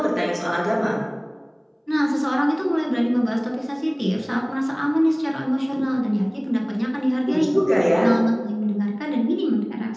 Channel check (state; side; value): identical; both; correlation 1.00